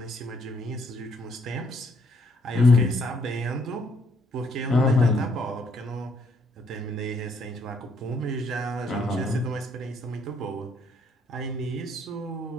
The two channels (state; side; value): normal; both; correlation 0.68